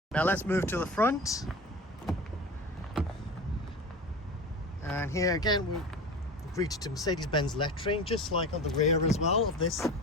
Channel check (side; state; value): both; normal; correlation 0.32